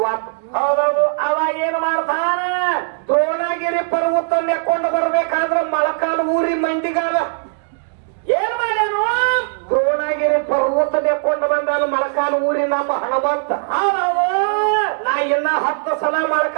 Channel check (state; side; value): silent; left; digital silence